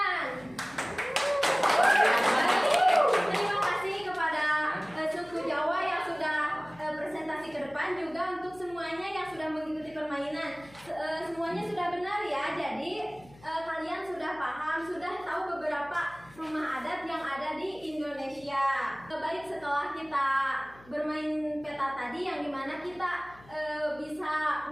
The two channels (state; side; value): noise; left; hum, 24 dB below the sound